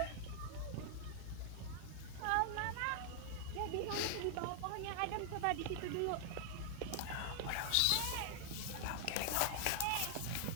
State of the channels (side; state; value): both; different; correlation 0.00